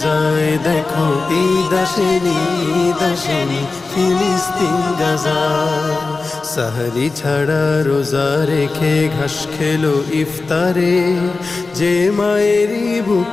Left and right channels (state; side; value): quieter; right; 3.8 dB